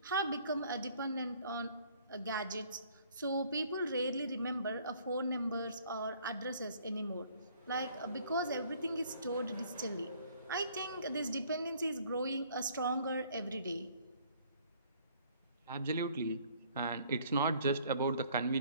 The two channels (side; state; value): both; inverted; correlation -0.59